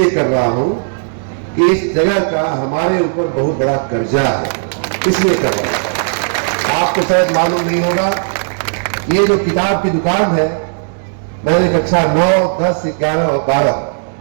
कर रहा हूं कि इस जगह का हमारे ऊपर बहुत बड़ा कर्जा है, इसलिए कर रहा हूं। आपको शायद मालूम नहीं होगा, ये जो किताब की दुकान है, मैंने कक्षा 9, 10, 11 और 12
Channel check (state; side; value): silent; left; digital silence